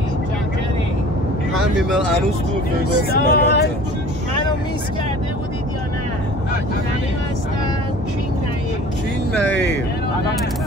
همین هنوز تو وگاس منو میس کرده بودید یا نه؟ نعیم هستم. کینگ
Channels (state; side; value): normal; both; correlation 0.45